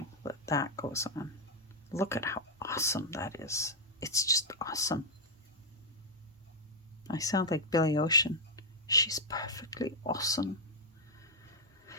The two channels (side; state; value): both; normal; correlation -0.03